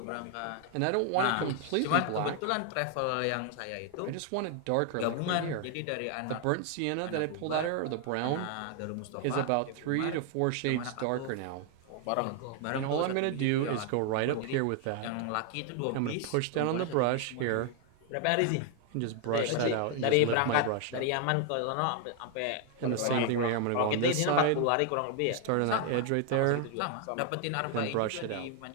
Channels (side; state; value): both; different; correlation 0.00